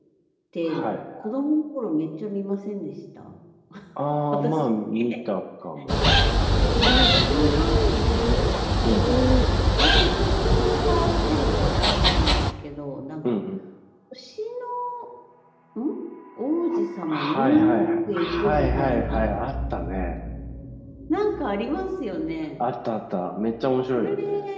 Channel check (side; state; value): both; identical; correlation 1.00